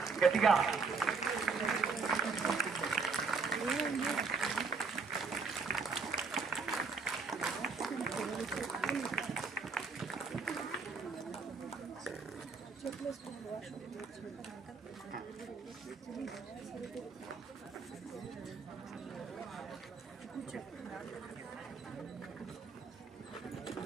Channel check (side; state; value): left; quieter; 4.6 dB